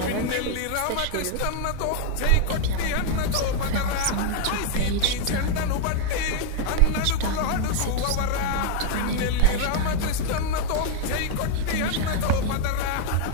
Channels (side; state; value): both; different; correlation 0.00